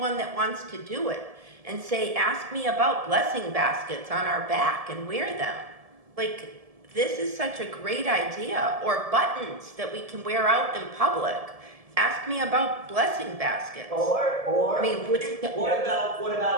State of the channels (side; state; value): left; late; 1.7 ms